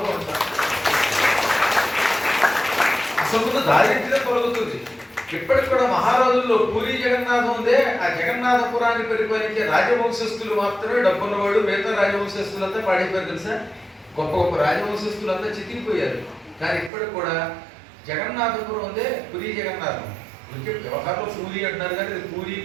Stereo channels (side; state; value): left; drops out; at 16.9 s